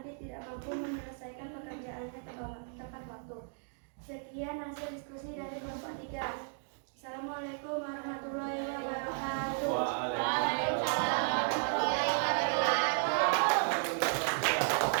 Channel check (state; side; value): silent; left; 55 dB below the other